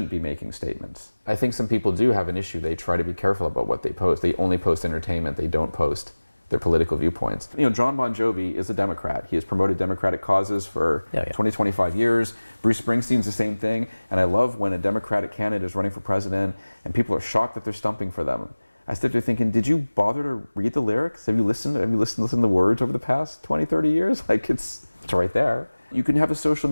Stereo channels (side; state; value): both; inverted; correlation -1.00